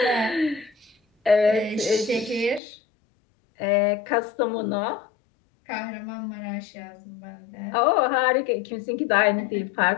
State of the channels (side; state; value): right; drops out; at 2.6 s